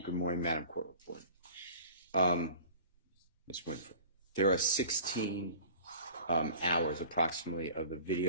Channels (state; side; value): inverted; both; correlation -0.43